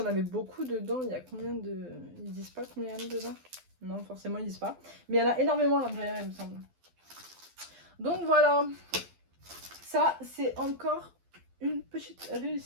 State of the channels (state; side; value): late; left; 12 ms